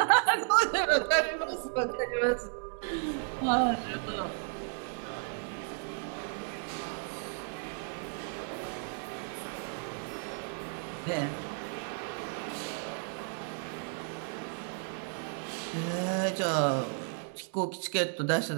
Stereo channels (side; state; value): left; silent; 56 dB below the other